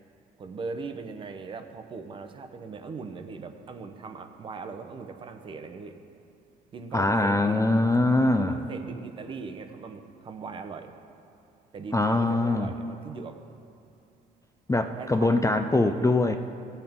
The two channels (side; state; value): both; normal; correlation 0.79